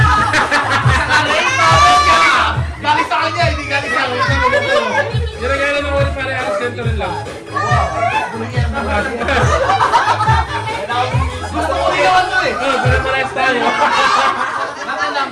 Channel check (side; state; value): both; identical; correlation 1.00